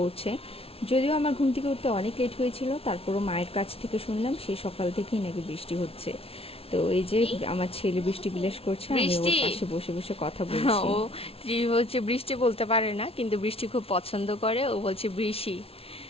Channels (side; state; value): right; late; 0.28 ms